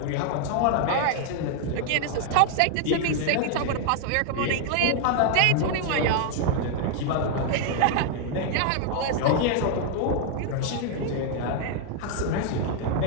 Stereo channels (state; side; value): different; both; correlation 0.00